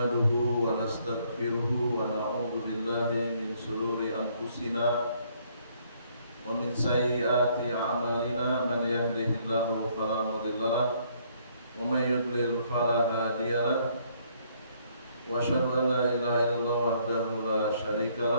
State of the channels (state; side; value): inverted; both; correlation -0.66